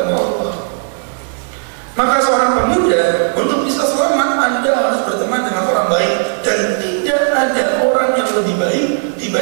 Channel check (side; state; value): left; silent; digital silence